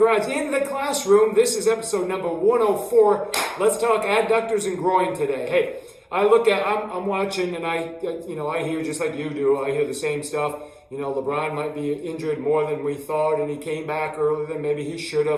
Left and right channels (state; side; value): identical; both; correlation 1.00